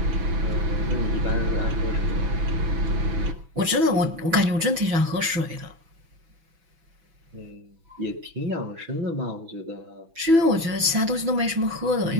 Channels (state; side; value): late; left; 6.0 ms